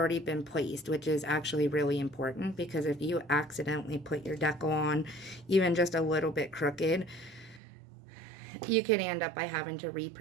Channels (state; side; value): drops out; left; at 7.6 s